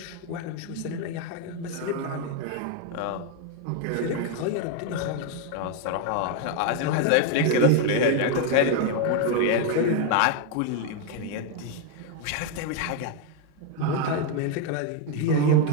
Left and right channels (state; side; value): different; both; correlation 0.02